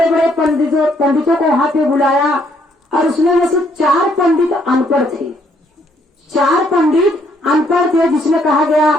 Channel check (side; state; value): both; normal; correlation 0.69